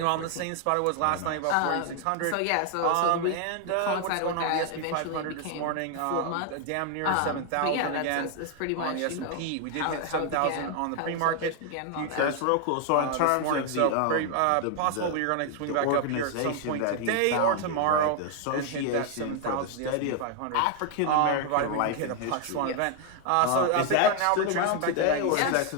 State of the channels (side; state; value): both; different; correlation 0.00